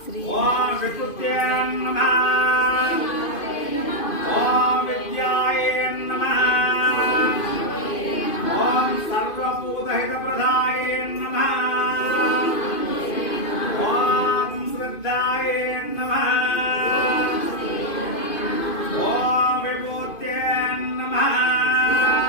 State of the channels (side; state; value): right; late; 2.5 ms